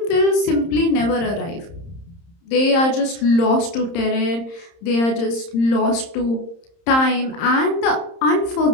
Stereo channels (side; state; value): right; late; 30 ms